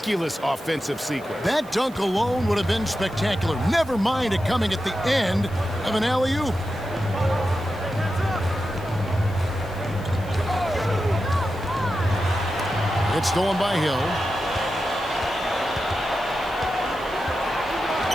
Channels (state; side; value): noise; right; hiss, 24 dB below the sound